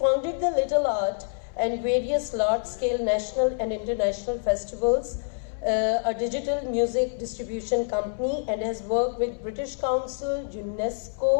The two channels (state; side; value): silent; right; 61 dB below the other